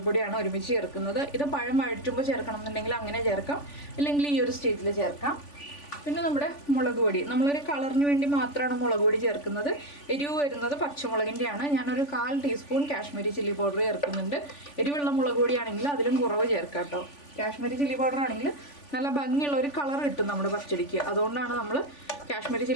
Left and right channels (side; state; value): right; late; 3.5 ms